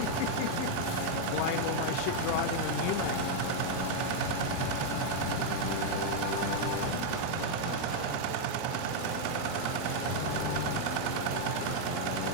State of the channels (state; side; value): different; both; correlation 0.00